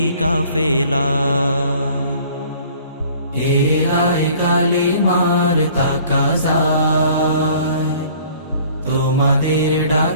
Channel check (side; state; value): both; inverted; correlation -0.53